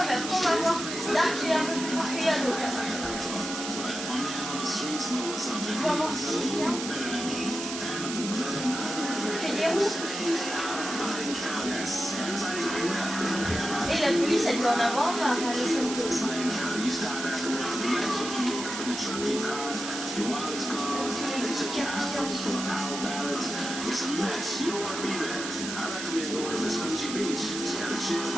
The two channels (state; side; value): noise; right; hiss, 6 dB below the sound